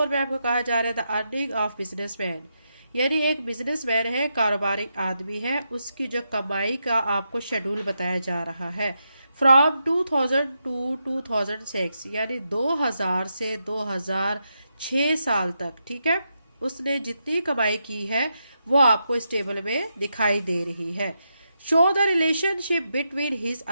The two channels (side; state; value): both; inverted; correlation -0.84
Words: में आपको कहा जा रहा है द अर्निंग ऑफ बिजनेसमैन, यानी एक बिजनेसमैन है, कारोबारी आदमी है, उसकी जो कमाई का आपको शेड्यूल बताया जा रहा है फ्रॉम 2000 टू 2006, यानी 2000 से 2006 साल तक। ठीक है, उसने जितनी कमाई की है वो आपको इस टेबल में दिखाई दे रही है। Show the relationship between his